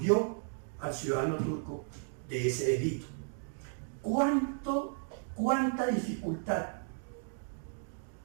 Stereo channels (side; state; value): left; silent; 55 dB below the other